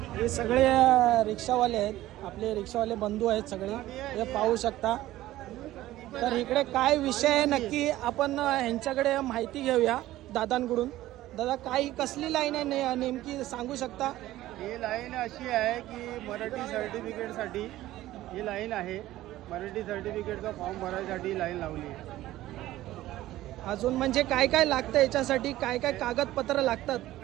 हे सगळे रिक्षावाले आहेत, आपले रिक्षावाले बंधू आहेत सगळे, हे पाहू शकता. तर इकडे काय विषय आहे नक्की आपण ह्यांच्याकडे माहिती घेऊया दादांकडून. दादा, काय कसली लाईन आहे नेमकी सांगू शकता? ही लाईन अशी आहे की मराठी सर्टिफिकेटसाठी ही लाईन आहे. मराठी सर्टिफिकेटचा फॉर्म भरायसाठी लाईन लावली आहे. अजून म्हणजे काय काय लागतं याच्यासाठी? काय काय कागदपत्र लागतात?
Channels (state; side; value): quieter; left; 15.4 dB